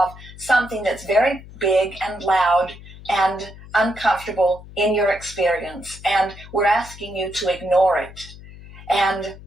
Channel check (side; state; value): left; noise; hum, 17 dB below the sound